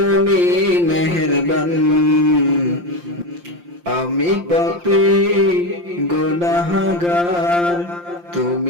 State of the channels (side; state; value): left; late; 5.7 ms